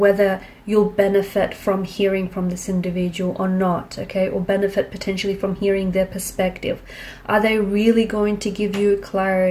you'll benefit from hearing from this individual or not, okay? Or benefit potentially from hearing their perspective. Are they really going to give you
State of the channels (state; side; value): identical; both; correlation 1.00